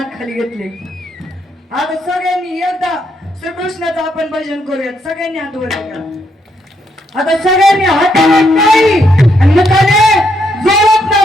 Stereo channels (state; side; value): normal; both; correlation 0.76